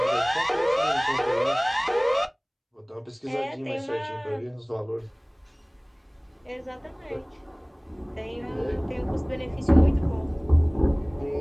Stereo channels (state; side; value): identical; both; correlation 1.00